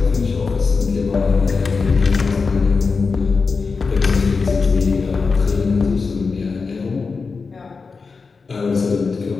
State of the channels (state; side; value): quieter; right; 4.7 dB